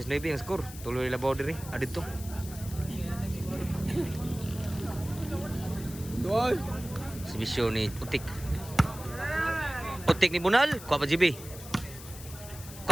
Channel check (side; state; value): left; noise; hiss, 15 dB below the sound